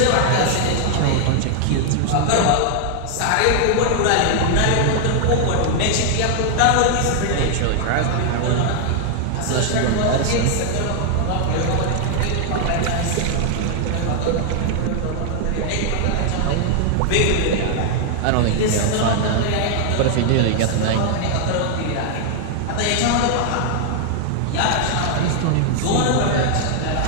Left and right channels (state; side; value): different; both; correlation 0.00